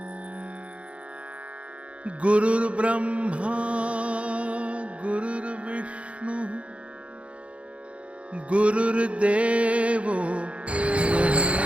गुरुर्ब्रह्मा गुरुर्विष्णु गुरुर्देवो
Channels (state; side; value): late; left; 0.062 ms